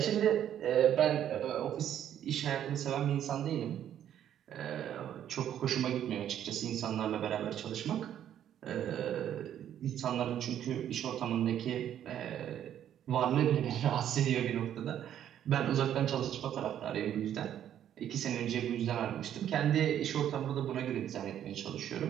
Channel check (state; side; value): quieter; left; 10.4 dB